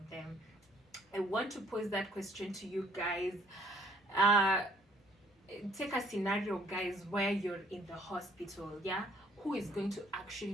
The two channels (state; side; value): normal; both; correlation 0.61